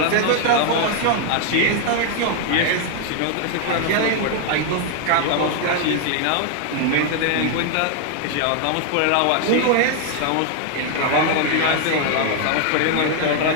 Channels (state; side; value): different; both; correlation 0.00